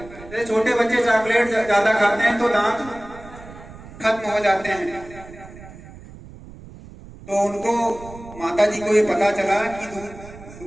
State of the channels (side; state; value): right; noise; rumble, 17 dB below the sound